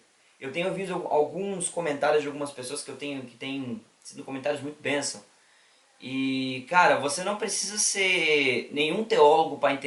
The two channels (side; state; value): both; identical; correlation 1.00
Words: Eu tenho ouvido alguns comentários de algumas pessoas que têm sido comentários muito bênção. E, cara, você não precisa ser nenhum teólogo para